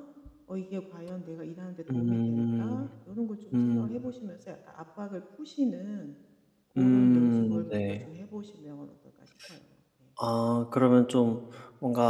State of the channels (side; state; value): both; identical; correlation 1.00